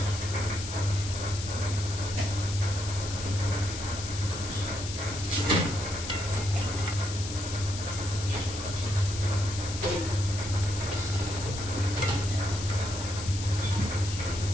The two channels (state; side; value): noise; left; hiss, 8 dB below the sound